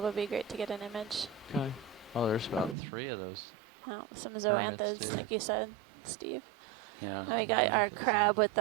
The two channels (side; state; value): left; drops out; at 2.8 s